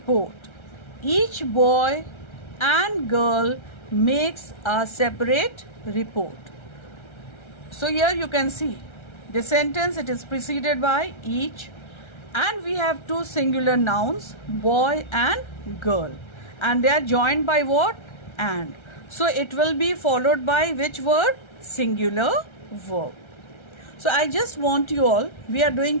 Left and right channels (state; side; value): late; right; 1.3 ms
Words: Each boy and girl makes a separate report. So here you can see the sentence, it is preceded by each, and we have two singular nouns, boy and girl, and they are joined by what? And. So it will be followed by which word? Singular verb. So I just want you all, we are